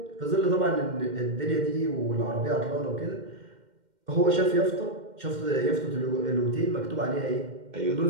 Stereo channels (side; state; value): left; late; 2.1 ms